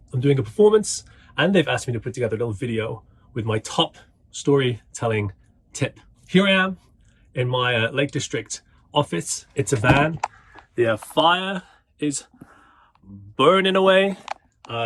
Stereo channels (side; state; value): both; identical; correlation 1.00